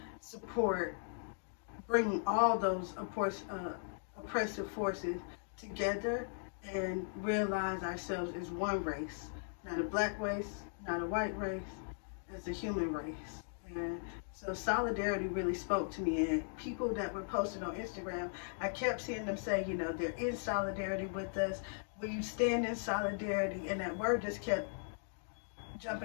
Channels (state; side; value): silent; right; digital silence